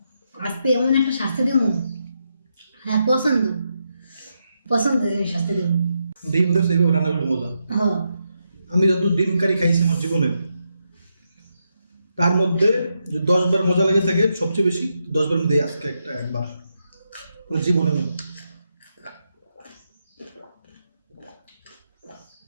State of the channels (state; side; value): inverted; both; correlation -0.83